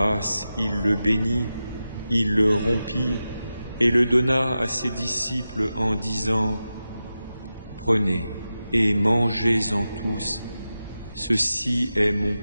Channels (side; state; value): both; inverted; correlation -0.92